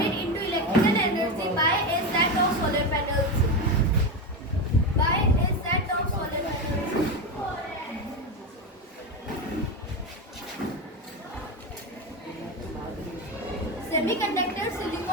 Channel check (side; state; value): both; normal; correlation 0.16